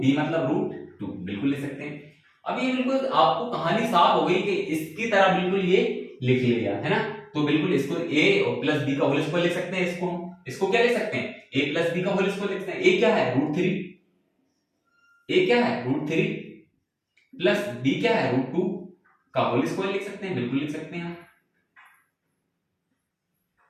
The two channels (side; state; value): both; identical; correlation 1.00